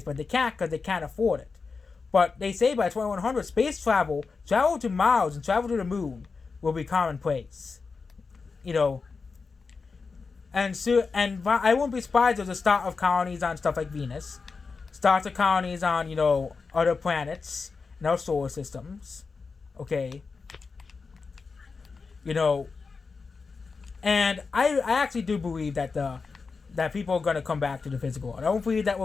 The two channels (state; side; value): quieter; right; 4.7 dB